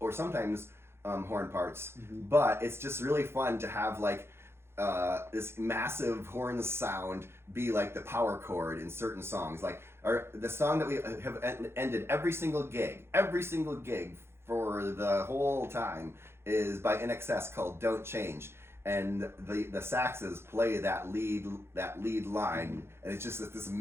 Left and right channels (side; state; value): left; late; 0.12 ms